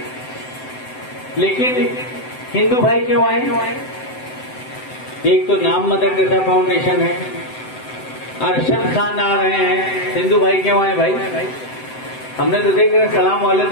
लेकिन हिंदू भाई क्यों आए? एक तो नाम मदर टेरेसा फाउंडेशन है, अरशद खान आ रहे हैं, हिंदू भाई क्यों आए भाई? हमने तो देख रहे सलाम वाले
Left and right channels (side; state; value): right; late; 7.8 ms